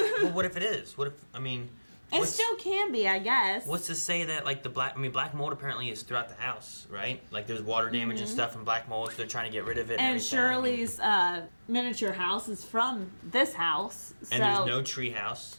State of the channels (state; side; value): inverted; both; correlation -1.00